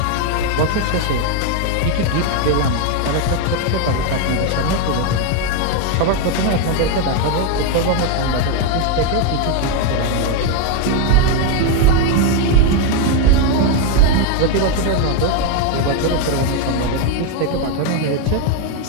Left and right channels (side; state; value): both; different; correlation 0.01